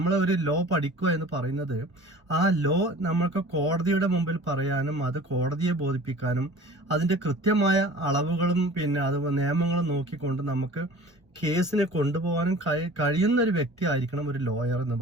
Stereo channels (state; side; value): normal; both; correlation 0.44